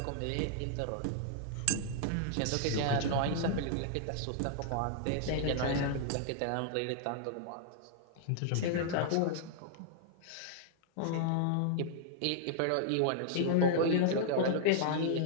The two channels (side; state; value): both; different; correlation -0.01